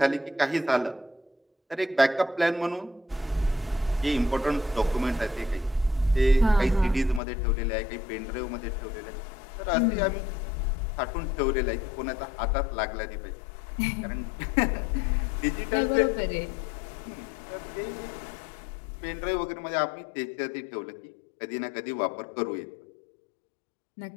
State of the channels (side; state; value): right; drops out; at 7.2 s